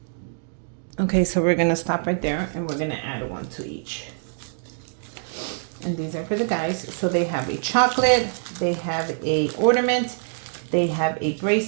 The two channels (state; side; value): silent; left; digital silence